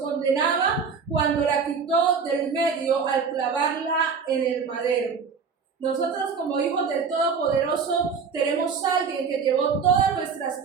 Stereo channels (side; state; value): left; quieter; 5.7 dB